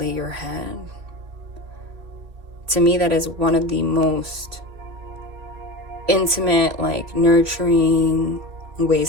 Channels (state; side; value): late; left; 3.3 ms